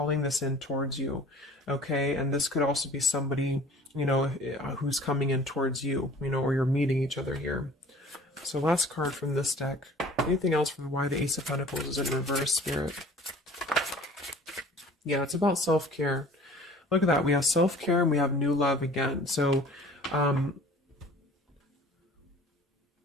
this in towards you. Okay, and this could also be somebody, you know, who's coming in towards you, you know, or you're meeting each other here. So last card from this deck. Anything else from why the Ace of Pentacles is in reverse, Spirit? Yeah, it's about self-care. Look at that. We have self-care and we have new love again. So,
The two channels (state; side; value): normal; both; correlation 0.48